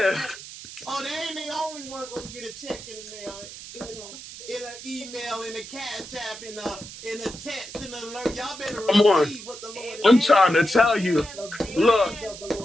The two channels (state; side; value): noise; right; hiss, 13 dB below the sound